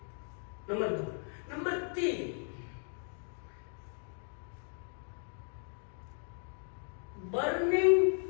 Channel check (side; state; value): right; silent; 54 dB below the other